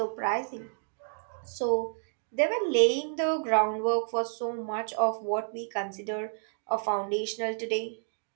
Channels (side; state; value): left; silent; 58 dB below the other